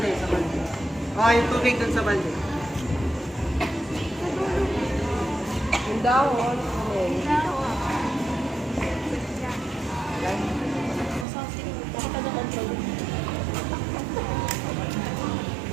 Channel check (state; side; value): drops out; left; at 11.2 s